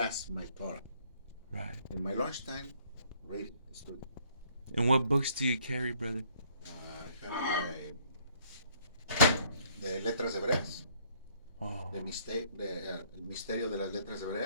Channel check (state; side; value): inverted; both; correlation -0.63